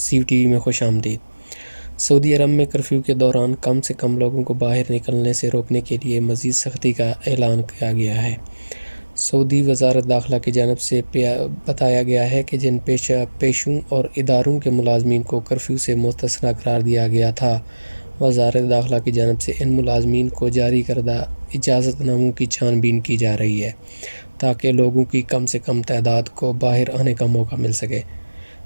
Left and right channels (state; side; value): inverted; both; correlation -1.00